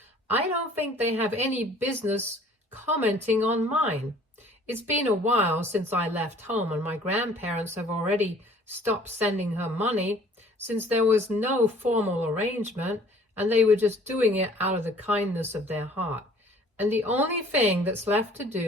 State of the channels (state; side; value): normal; both; correlation 0.53